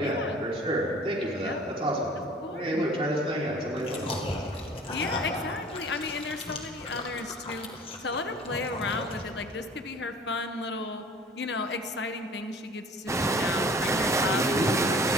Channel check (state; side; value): normal; both; correlation 0.48